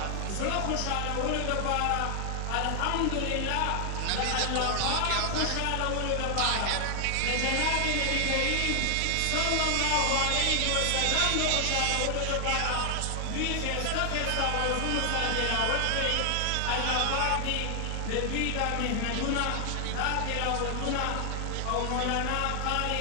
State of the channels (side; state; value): both; different; correlation 0.00